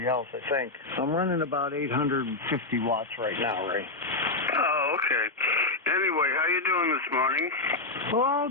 else, I think. I'm running about 850 watts right now, Ray. Oh, okay. Anyway, how you doing this morning? Well,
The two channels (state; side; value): quieter; right; 3.2 dB